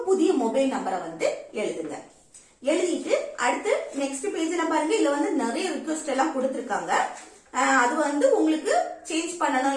புதிய மொபைல் நம்பரை வந்து எழுதுங்க. எழுதிட்டு அடுத்து நெக்ஸ்ட் பேஜ்ல பாருங்க, இதுல வந்து நிறைய ரிக்வெஸ்ட் எல்லாம் கொடுத்திருக்காங்க. அது வந்து உங்களுக்கு சேஞ்ச் பண்ணணும்,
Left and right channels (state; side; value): identical; both; correlation 1.00